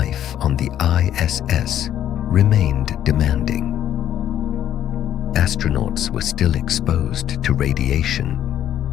on the ISS remained demanding. Astronauts were still exposed to radiation,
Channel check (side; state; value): right; quieter; 11.0 dB